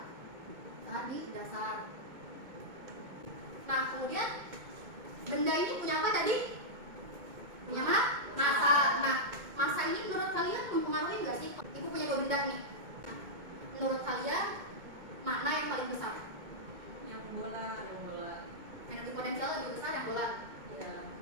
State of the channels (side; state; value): left; late; 2.2 ms